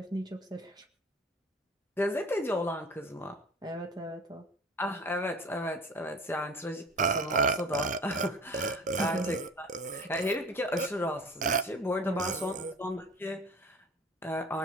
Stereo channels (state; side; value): normal; both; correlation 0.41